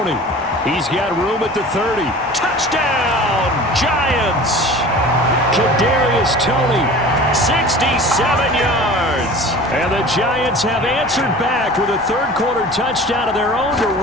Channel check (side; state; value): both; normal; correlation 0.40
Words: He's got room at the 30. Touchdown, Giants! Kadarius Toney, 67 yards. And the Giants have answered back with a third-quarter touchdown of their own to